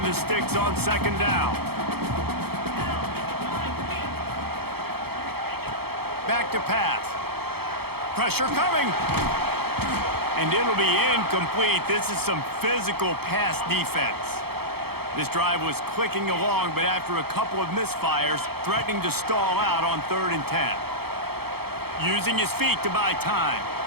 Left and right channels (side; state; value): left; late; 0.96 ms